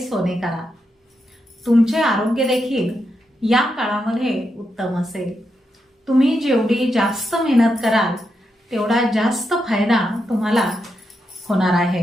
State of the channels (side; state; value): both; normal; correlation 0.84